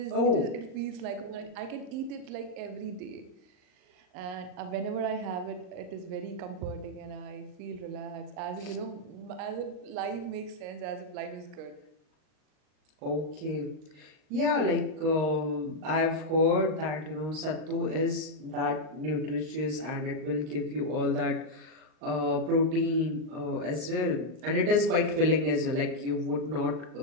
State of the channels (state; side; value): late; left; 38 ms